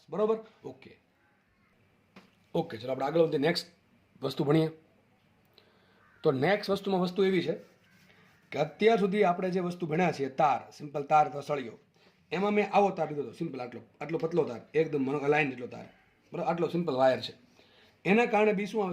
બરાબર. ઓકે ચલો આપણે આગળ વધીએ, નેક્સ્ટ વસ્તુ ભણીએ. તો નેક્સ્ટ વસ્તુમાં વસ્તુ એવી છે કે અત્યાર સુધી આપણે જે વસ્તુ ભણ્યા છે તાર, સિમ્પલ તાર અથવા સળિયો, એમાં મેં આવો તાર લીધો હતો, સિમ્પલ આટલો પતલો તાર, એકદમ લાઈન જેટલો તાર, બરાબર, આટલો સિમ્પલ વાયર છે. એના કારણે બી શું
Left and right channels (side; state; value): both; identical; correlation 1.00